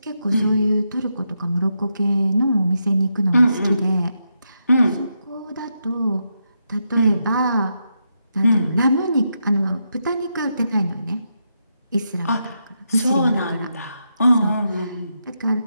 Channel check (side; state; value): both; inverted; correlation -0.83